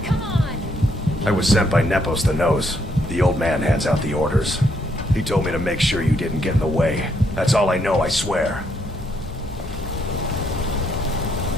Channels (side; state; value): both; normal; correlation 0.74